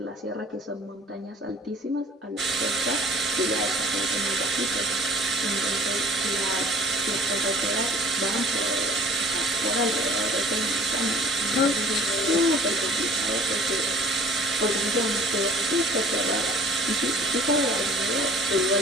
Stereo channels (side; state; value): both; normal; correlation 0.49